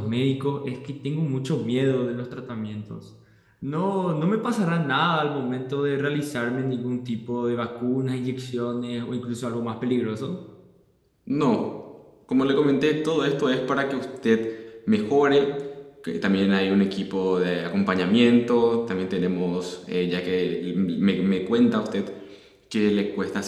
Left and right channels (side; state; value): both; identical; correlation 1.00